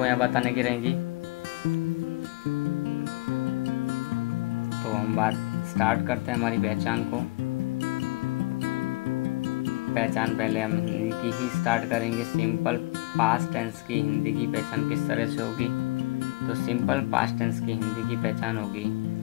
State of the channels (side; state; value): right; quieter; 22.2 dB